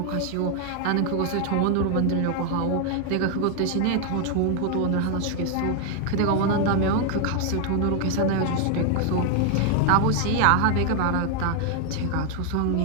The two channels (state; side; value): different; both; correlation 0.00